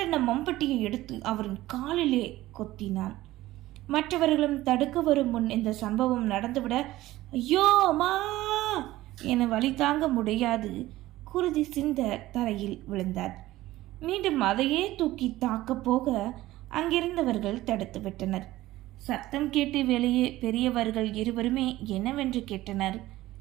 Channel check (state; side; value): quieter; left; 16.5 dB